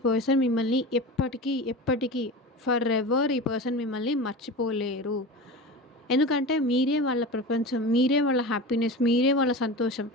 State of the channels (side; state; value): both; normal; correlation 0.30